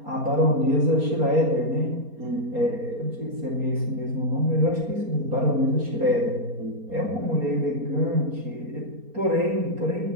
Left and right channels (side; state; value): left; late; 4.3 ms